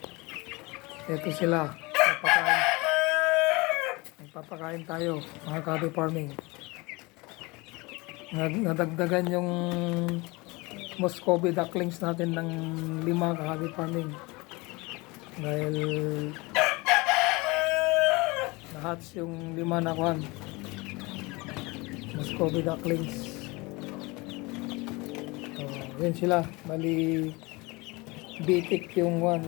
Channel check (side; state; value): right; quieter; 24.9 dB